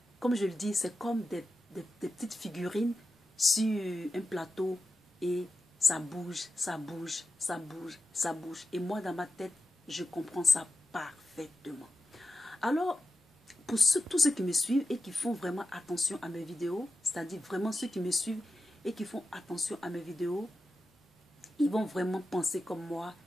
comme je le dis, c'est comme des petites figurines sur un plateau et ça bouge, ça bouge, ça bouge, ça bouge. Et moi, dans ma tête, je comprends ça parfaitement. Alors, pour tous ceux qui me suivent et qui font vraiment attention à mes vidéos, c'est-à-dire vraiment ceux qui me suivent et qui font attention à mes vidéos, ils vont vraiment penser comme moi,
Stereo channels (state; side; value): normal; both; correlation 0.92